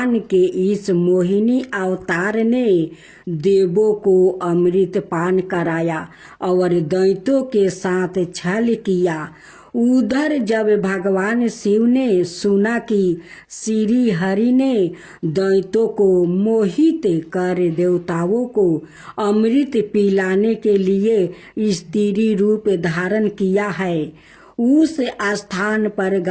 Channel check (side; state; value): both; identical; correlation 1.00